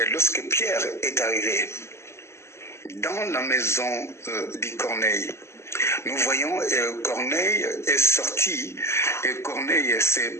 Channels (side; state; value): right; late; 0.13 ms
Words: lorsque Pierre est arrivé dans la maison de Corneille. Nous voyons Corneille est sorti et Corneille